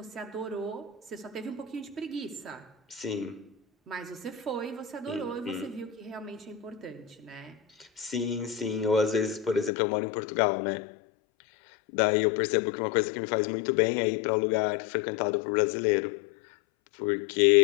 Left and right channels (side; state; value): right; drops out; at 9.7 s